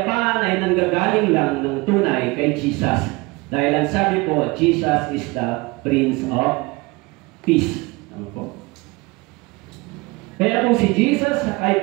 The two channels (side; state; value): left; quieter; 24.2 dB